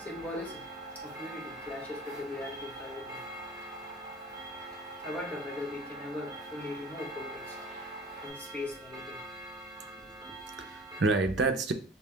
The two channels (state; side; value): normal; both; correlation 0.43